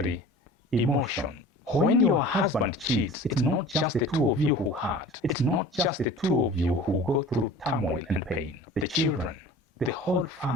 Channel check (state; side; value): normal; both; correlation 0.42